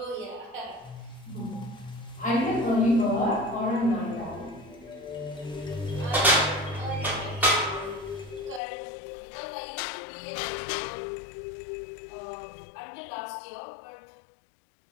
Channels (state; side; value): drops out; right; at 8.6 s